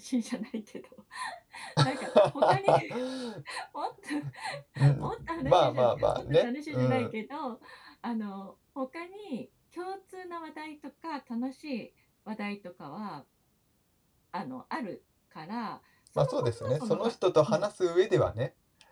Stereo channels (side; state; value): both; identical; correlation 1.00